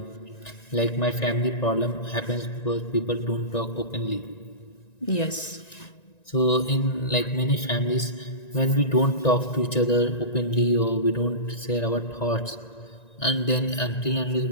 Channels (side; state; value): right; late; 1.9 ms